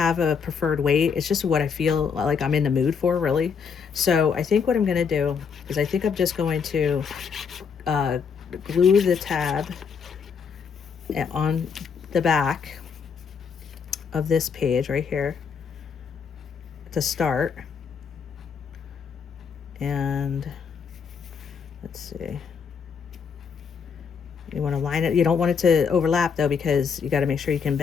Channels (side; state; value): right; quieter; 6.3 dB